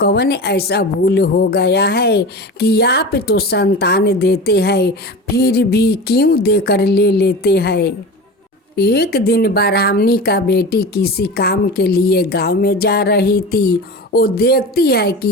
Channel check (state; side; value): normal; both; correlation 0.31